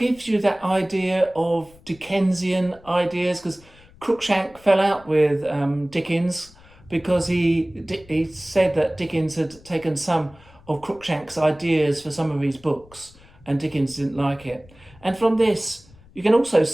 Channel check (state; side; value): noise; left; rumble, 25 dB below the sound